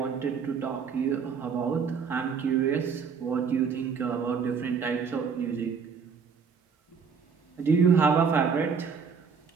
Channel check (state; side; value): quieter; left; 6.1 dB